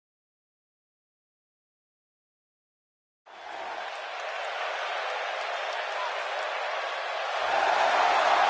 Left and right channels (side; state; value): both; identical; correlation 1.00